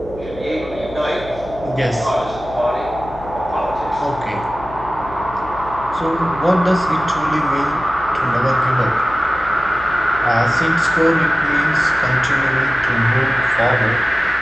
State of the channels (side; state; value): left; noise; hum, 17 dB below the sound